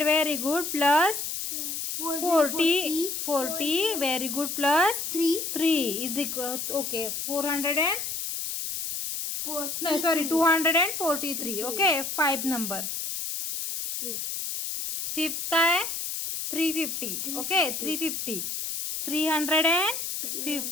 very good plus 40 very good plus 3 is equal. Okay, 243. Okay, 5 number. Fifth काय, 350. ओके, 350.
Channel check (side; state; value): left; noise; hiss, 4 dB below the sound